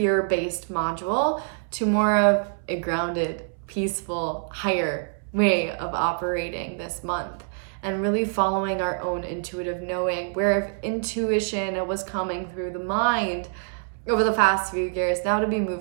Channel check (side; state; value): left; silent; 61 dB below the other